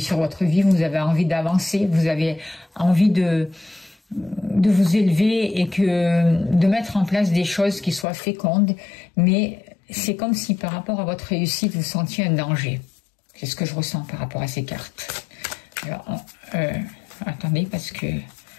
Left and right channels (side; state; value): right; drops out; at 8.1 s